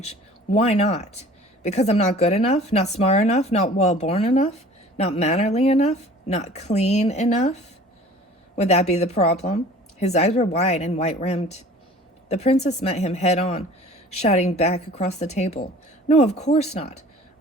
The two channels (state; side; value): normal; both; correlation 0.47